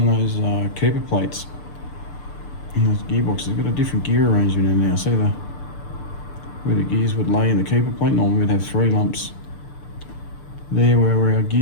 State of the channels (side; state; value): right; late; 6.8 ms